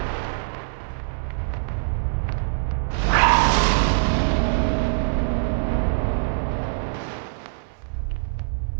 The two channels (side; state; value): left; silent; 63 dB below the other